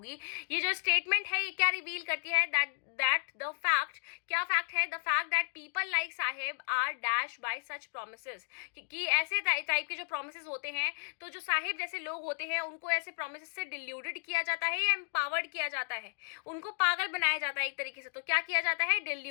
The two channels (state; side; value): silent; right; digital silence